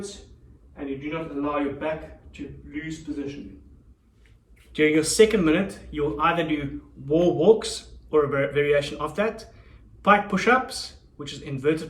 and you do not allow your back to lose position. During your second minute, you'll either do wall walks or a variation of that, pike push-ups, which is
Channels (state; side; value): identical; both; correlation 1.00